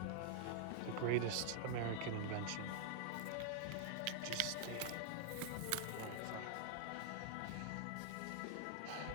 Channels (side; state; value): both; different; correlation 0.00